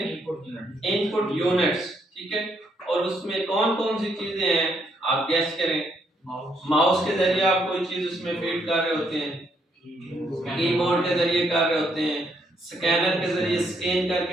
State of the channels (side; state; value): both; normal; correlation 0.73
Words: Input units. ठीक है, और उसमें कौन कौन सी चीजें हैं आप गैस करें। माउस के जरिए आप कोई चीज उसमें फीड कर रहे होते हैं, कीबोर्ड के जरिए कर रहे होते हैं, स्कैनर के जरिए स्कैन